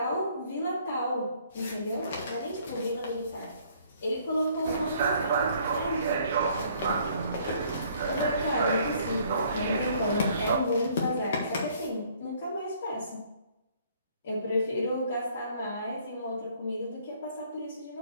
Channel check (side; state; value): both; inverted; correlation -0.61